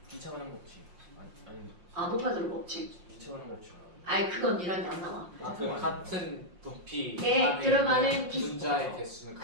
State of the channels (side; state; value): left; late; 5.6 ms